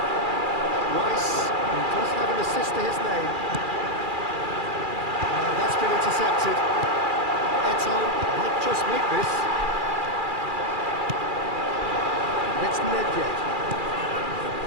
Rice, who does have an assist to his name. That's been intercepted. Eto might just make this. It's Nedved.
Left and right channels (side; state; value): left; late; 2.4 ms